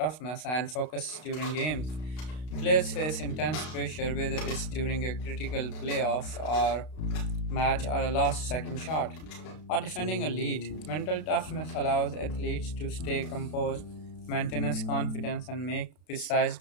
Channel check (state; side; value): late; right; 32 ms